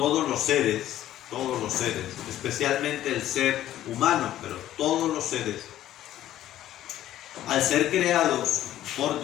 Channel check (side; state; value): right; quieter; 12.9 dB